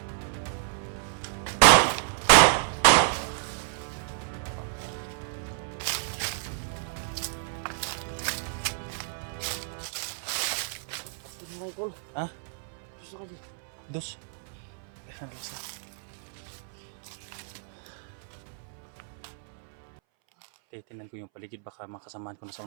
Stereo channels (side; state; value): left; silent; 58 dB below the other